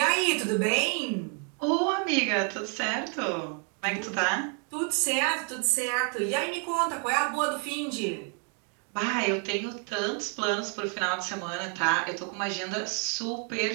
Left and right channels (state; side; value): quieter; left; 40.0 dB